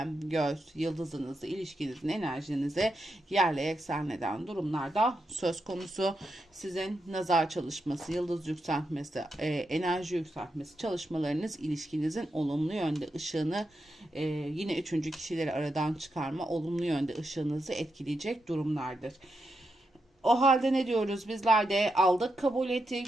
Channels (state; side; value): normal; both; correlation 0.85